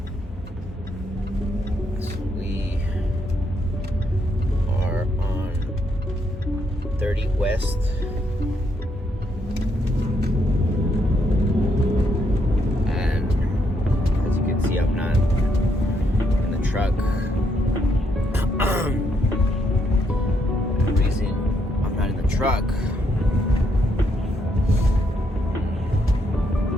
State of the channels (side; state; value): both; normal; correlation 0.76